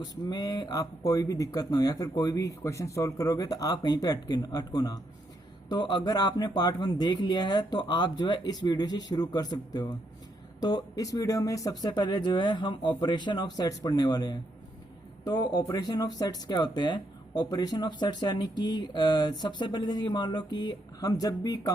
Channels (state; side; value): normal; both; correlation 0.77